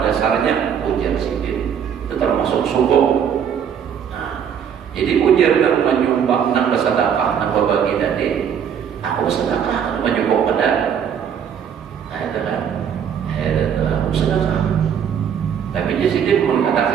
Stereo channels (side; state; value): left; quieter; 8.1 dB